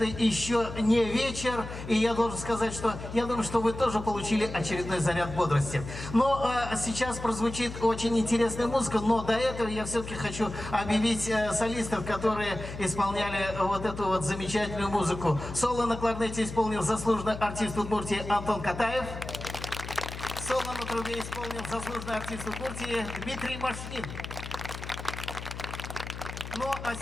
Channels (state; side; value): noise; left; hum, 9 dB below the sound